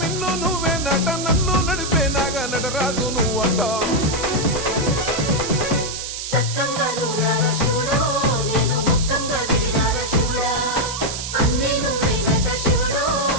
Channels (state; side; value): noise; right; hiss, 6 dB below the sound